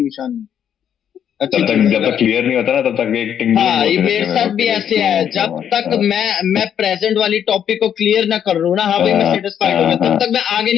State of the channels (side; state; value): right; quieter; 9.1 dB